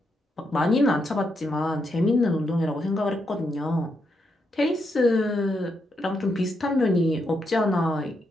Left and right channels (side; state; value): both; normal; correlation 0.81